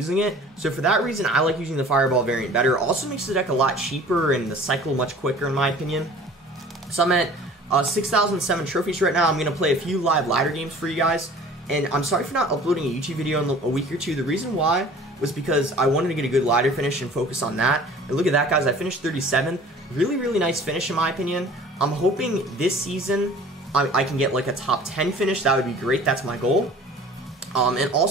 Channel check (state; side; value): normal; both; correlation 0.47